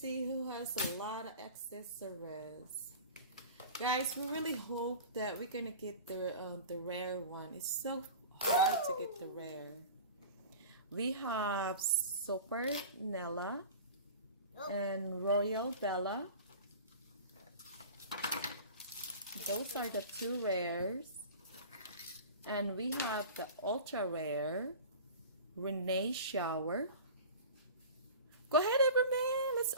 who has a lot of accessories. Guys, we really hope that we're gonna get the rare one. It's so hard to get the rare. We have Super Nella and Royal Bella. Those are the two rares. And we have the ultra rare Renee Shower. Go ahead, Everman. Let's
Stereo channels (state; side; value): inverted; both; correlation -0.37